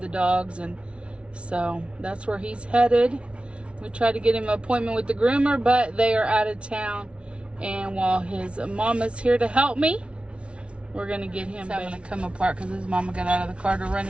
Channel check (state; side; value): late; left; 0.059 ms